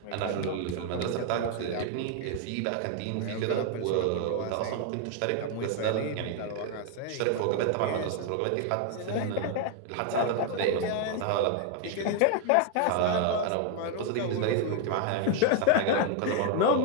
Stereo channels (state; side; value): different; both; correlation 0.00